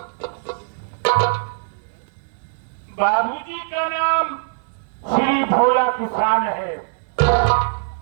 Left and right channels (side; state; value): left; silent; 65 dB below the other